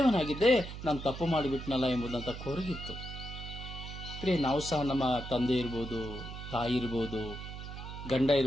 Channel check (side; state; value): right; noise; hum, 9 dB below the sound